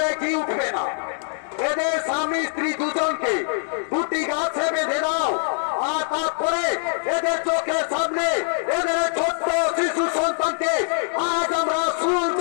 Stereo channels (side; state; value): right; silent; digital silence